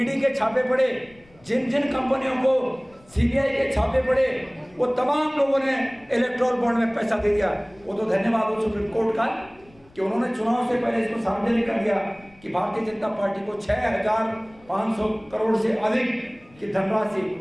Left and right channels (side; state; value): left; noise; rumble, 28 dB below the sound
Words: के छापे पड़े जिन जिन कंपनियों को CBI के छापे पड़े वो तमाम लोगों ने इलेक्ट्रल बॉन्ड में पैसा दे दिया। वो तो धन्यवाद हो सुप्रीम कोर्ट का कि उन्होंने चुनाव से पहले इसको सार्वजनिक कर दिया कि भारतीय जनता पार्टी को 6,500 करोड़ से अधिक की धनराशि